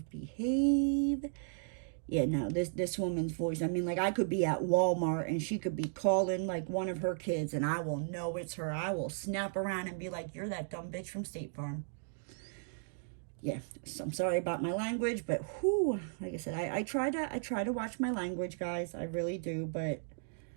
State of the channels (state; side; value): silent; left; digital silence